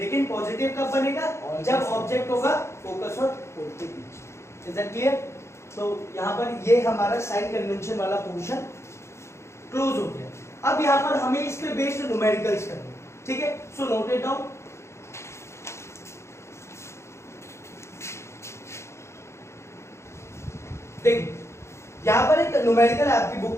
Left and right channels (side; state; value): right; late; 0.13 ms